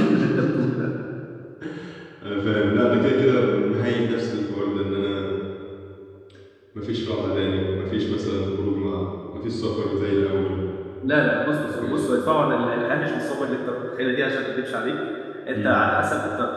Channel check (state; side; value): identical; both; correlation 1.00